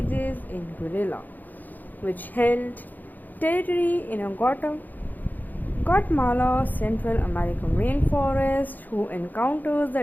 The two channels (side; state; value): right; late; 0.085 ms